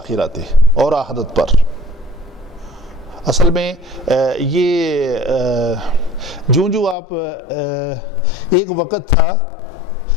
اور آخرت پر. اصل میں یہ جو آپ ایک وقت تھا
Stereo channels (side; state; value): right; drops out; at 7.0 s